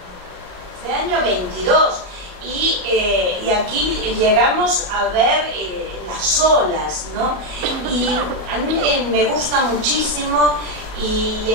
Y aquí llegamos a ver las olas, ¿no? Y a mí me gusta muchísimo, y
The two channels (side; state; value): left; late; 34 ms